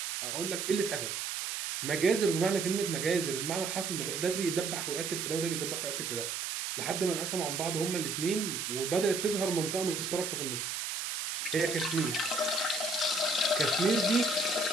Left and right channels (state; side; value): noise; right; hiss, 3 dB below the sound